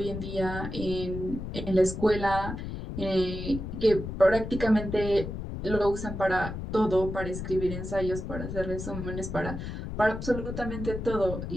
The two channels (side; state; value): left; noise; rumble, 6 dB below the sound